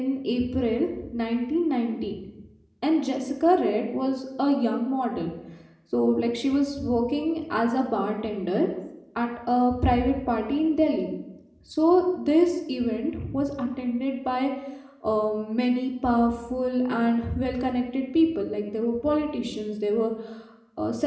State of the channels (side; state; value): both; identical; correlation 1.00